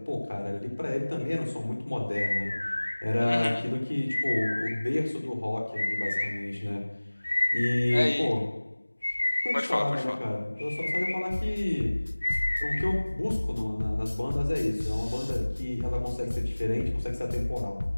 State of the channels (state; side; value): inverted; both; correlation -1.00